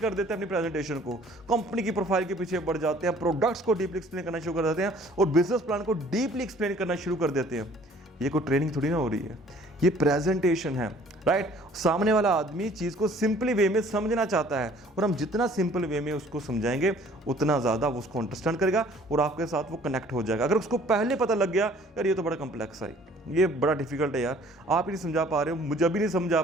देते हैं अपनी प्रेजेंटेशन को, कंपनी की प्रोफाइल के पीछे बढ़ जाते हैं, प्रोडक्ट्स को डीपली एक्सप्लेन करना शुरू कर देते हैं और बिजनेस प्लान को डीपली एक्सप्लेन करना शुरू कर देते हैं। ये कोई ट्रेनिंग थोड़ी ना हो रही है, ये प्रेजेंटेशन है, राइट। सामने वाला आदमी चीज को सिंपली वे में समझना चाहता है, और हम जितना सिंपल वे में उसको समझाएंगे उतना ज्यादा वो उसको अंडरस्टैंड करेगा और आपके साथ वो कनेक्ट हो जाएगा। अगर उसको पहले पता लग गया यार ये तो बड़ा कॉम्प्लेक्स है, ये बड़ा डिफिकल्ट है यार, आप ही नहीं समझा पा रहे हो, मुझे अभी नहीं समझा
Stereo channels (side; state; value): both; normal; correlation 0.55